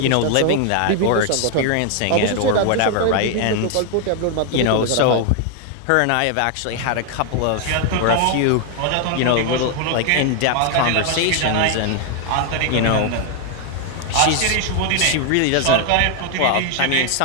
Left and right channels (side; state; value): both; different; correlation 0.00